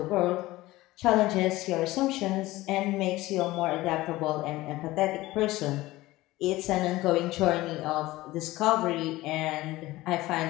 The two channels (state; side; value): quieter; right; 18.2 dB